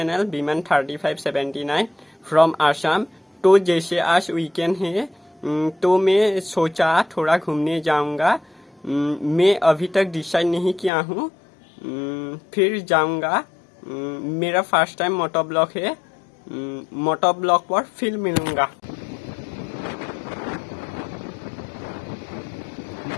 Biman3579 from Assam। तो जैसे आज वीकेंड है तो मैं सोचा थोड़ा घूमने जाऊंगा। मैं अभी तक डिसाइड नहीं किया हूँ, फिर जाऊंगा। मेरा फर्स्ट टाइम मोटो ब्लॉग है, मोटो ब्लॉग पर फिर मिलूंगा।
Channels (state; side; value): drops out; right; at 10.9 s